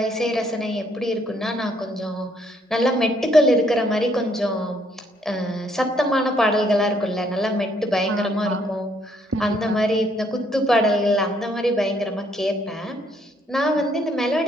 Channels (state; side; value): normal; both; correlation 0.68